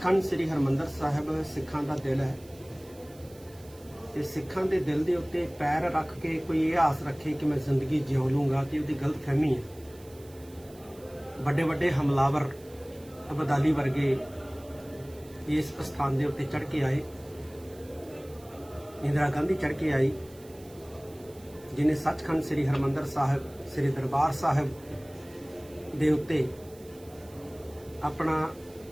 ਸ੍ਰੀ ਹਰਿਮੰਦਰ ਸਾਹਿਬ ਸਿੱਖਾਂ ਦਾ ਦਿਲ ਹੈ ਤੇ ਸਿੱਖਾਂ ਦੇ ਦਿਲ ਦੇ ਉੱਤੇ ਪੈਰ ਰੱਖ ਕੇ ਕੋਈ ਇਹ ਆਸ ਰੱਖੇ ਕਿ ਮੈਂ ਜ਼ਿੰਦਗੀ ਜਿਉ ਲੂੰਗਾ ਤੇ ਉਹਦੀ ਗਲਤਫਹਿਮੀ ਹੈ। ਵੱਡੇ ਵੱਡੇ ਹਮਲਾਵਰ ਅਬਦਾਲੀ ਵਰਗੇ ਇਸ ਸਥਾਨ ਦੇ ਉੱਤੇ ਚੜ੍ਹ ਕੇ ਆਏ। ਇੰਦਰਾ ਗਾਂਧੀ ਚੜ੍ਹ ਕੇ ਆਈ ਜਿਨੇ ਸੱਚਖੰਡ ਸ੍ਰੀ ਹਰਿਮੰਦਰ ਸਾਹਿਬ ਸ੍ਰੀ ਦਰਬਾਰ ਸਾਹਿਬ ਦੇ ਉੱਤੇ ਆਪਣਾ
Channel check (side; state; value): right; noise; hiss, 24 dB below the sound